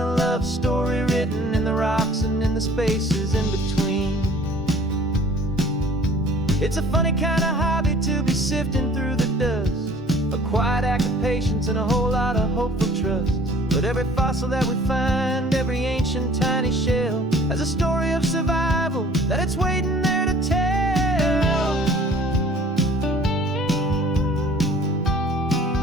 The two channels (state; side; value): normal; both; correlation 0.52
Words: love story written in the rocks and in the spaces in between. It's a funny kind of hobby to be sifting through the dust, a quiet act of patience and a whole lot of hopeful trust. But every fossil that we find, every ancient tiny shell, has a story of survival that it's waiting there to tell.